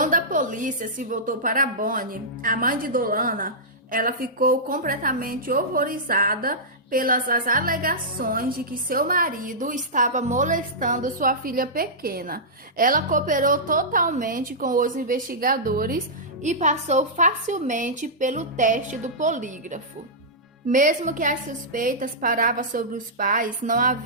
a polícia se voltou para Bonnie, a mãe de Dolana, ela ficou completamente horrorizada pelas alegações de que seu marido estava molestando sua filha pequena. Ela cooperou totalmente com os investigadores e passou facilmente pelo teste do polígrafo. Mesmo que as suspeitas paravam sobre os pais, não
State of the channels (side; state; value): both; normal; correlation -0.14